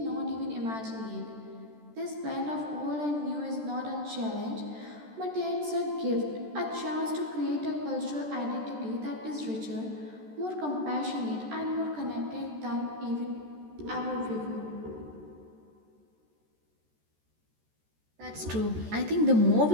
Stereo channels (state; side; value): late; left; 14 ms